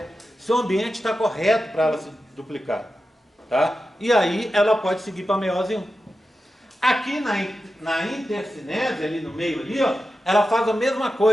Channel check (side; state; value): both; normal; correlation 0.91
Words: se o ambiente está correto para ela se duplicar. Tá? E aí ela pode seguir para a meiose 1. Aqui na intercinese, ali no meio, ali, ó, ela faz a mesma